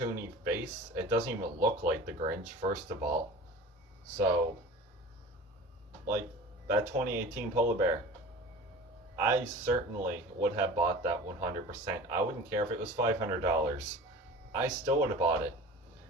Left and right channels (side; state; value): both; normal; correlation 0.38